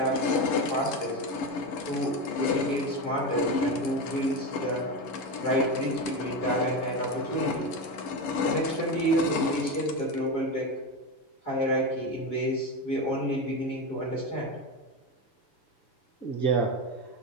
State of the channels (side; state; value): right; late; 7.1 ms